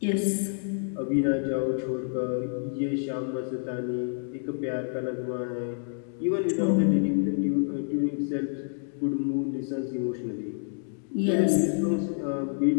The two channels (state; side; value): silent; right; 59 dB below the other